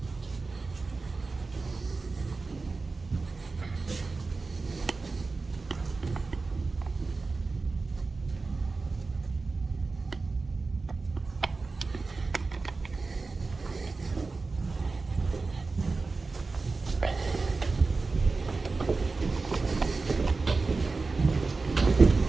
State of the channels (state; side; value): quieter; left; 3.9 dB